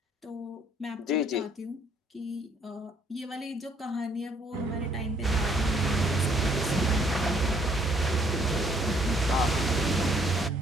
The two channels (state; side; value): normal; both; correlation 0.65